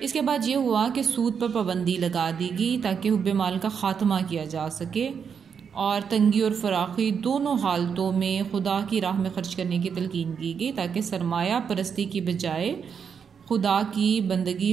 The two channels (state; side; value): quieter; left; 6.8 dB